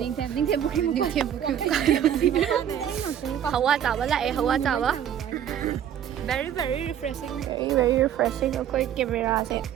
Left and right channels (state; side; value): quieter; left; 9.8 dB